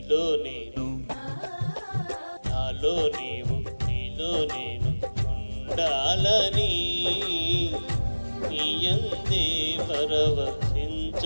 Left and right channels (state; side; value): inverted; both; correlation -1.00